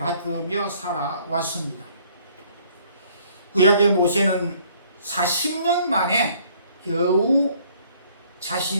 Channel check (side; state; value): both; inverted; correlation -0.61